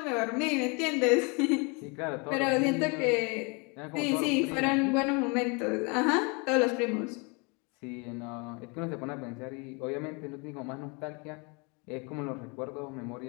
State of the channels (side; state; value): right; quieter; 31.5 dB